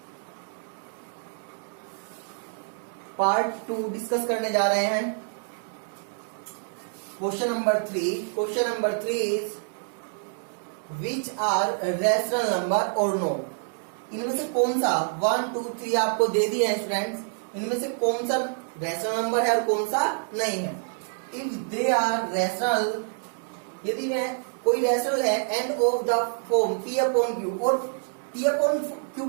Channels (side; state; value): left; silent; digital silence